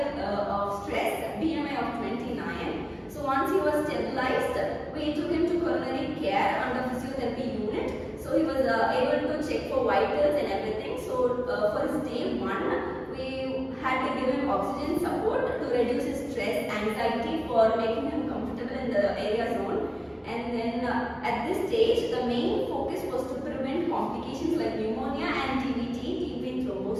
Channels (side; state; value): both; identical; correlation 1.00